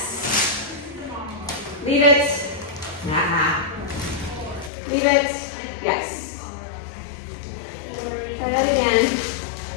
Leave it. Nah. Leave it. Yes. Try that again.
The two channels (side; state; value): right; drops out; at 4.7 s